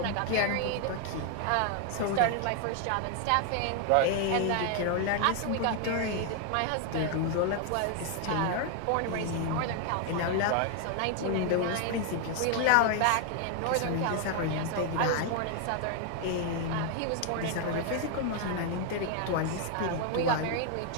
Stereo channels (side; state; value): both; different; correlation 0.00